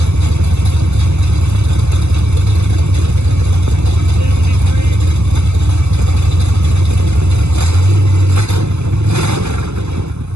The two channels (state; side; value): late; left; 0.81 ms